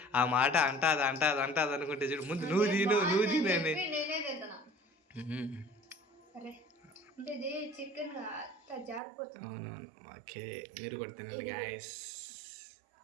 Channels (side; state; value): left; drops out; at 9.0 s